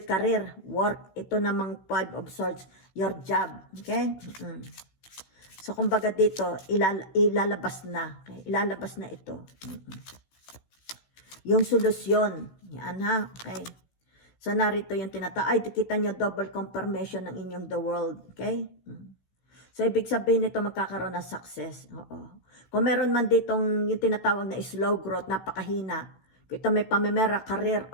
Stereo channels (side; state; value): right; late; 16 ms